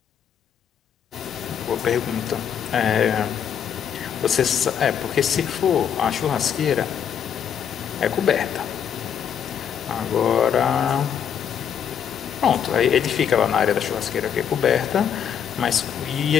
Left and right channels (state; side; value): quieter; right; 8.4 dB